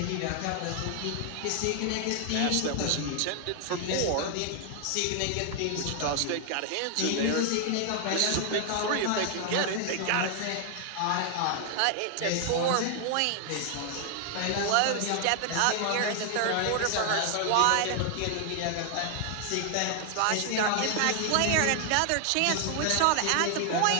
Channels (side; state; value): both; different; correlation 0.00